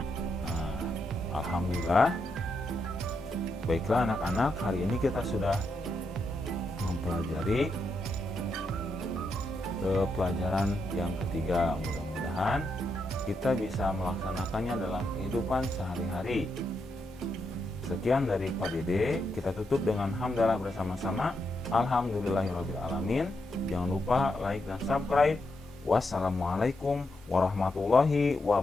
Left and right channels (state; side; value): normal; both; correlation 0.82